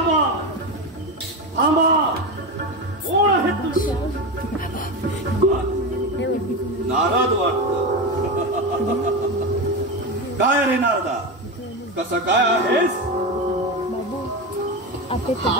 नारद वाटत. काय रे नारदा, कसं काय आहेस?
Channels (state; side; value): normal; both; correlation 0.18